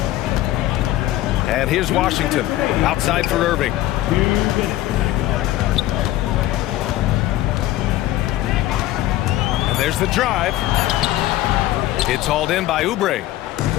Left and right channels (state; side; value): quieter; right; 15.3 dB